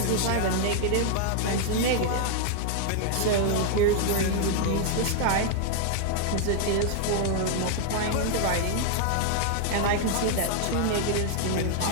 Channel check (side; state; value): both; different; correlation 0.00